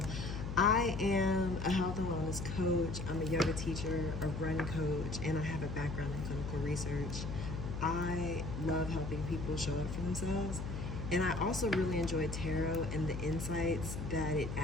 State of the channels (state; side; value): noise; left; hum, 5 dB below the sound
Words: I am a health and wellness coach. I'm a yoga teacher, a run coach, and I have a background in clinical research. I love helping people show up for themselves. And I also really enjoy tarot and the insights that it